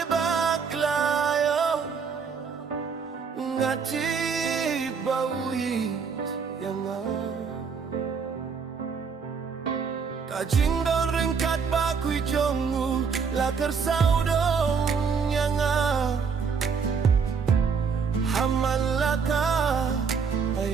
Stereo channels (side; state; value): left; quieter; 5.9 dB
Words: baklayo ngati bawit yanga kajingdon ringkat bakui jongu lakar saudong yanga hamalaka